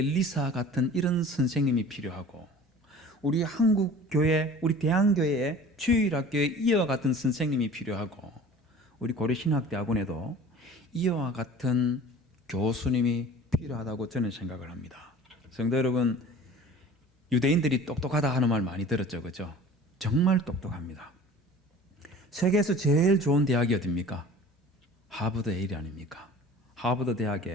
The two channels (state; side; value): normal; both; correlation 0.43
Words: 같은 이런 선생님이 필요하고, 우리 한국교회, 우리 대한교회에 주일학교에 이와 같은 선생님이 필요하고, 우리 고려신학대학원에도 이와 같은 교수님이 필요하다고 저는 생각을 합니다. 성도 여러분, 유대인들이 똑똑하다 하는 말 많이 들었죠, 그죠? 정말 똑똑합니다. 세계에서 제일 좋은 대학이 어딥니까? 하버드 예일 아닙니까? 하버드